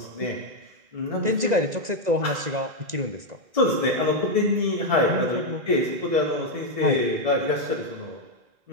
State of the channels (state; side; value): late; left; 1.9 ms